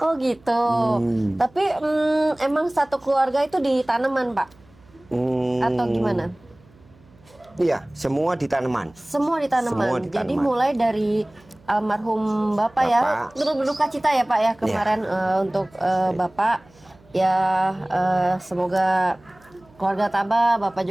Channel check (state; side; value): noise; right; hum, 29 dB below the sound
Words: Oh gitu. Tapi emang satu keluarga itu di tanaman, Pak? Atau gimana? Iya, semua di tanaman. Semua di tanaman. Semua di Jadi tanaman. mulai dari almarhum Bapak ya. Bapak. Turut berduka cita ya Pak ya kemarin untuk Bapak. Ya semoga keluarga tabah, Bapak